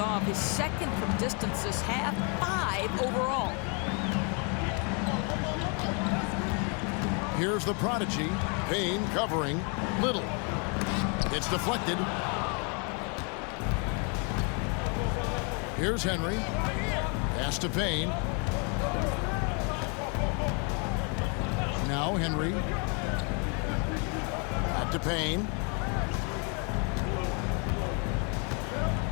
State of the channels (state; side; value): quieter; right; 36.1 dB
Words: His second from distance this half, 5 overall. Here's the prodigy. Payne covering. Little. It's deflected. Here's Henry. Pass to Payne. Now Henry. Back to Payne.